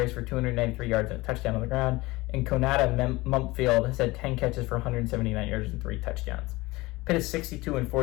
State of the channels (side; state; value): right; quieter; 21.2 dB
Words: for 293 yards and a touchdown on the ground. And Konata Mumpfield has had 10 catches for 179 yards and 3 touchdowns. Pitt is